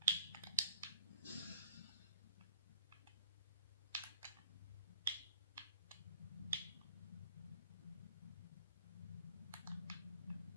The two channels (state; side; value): inverted; both; correlation -0.55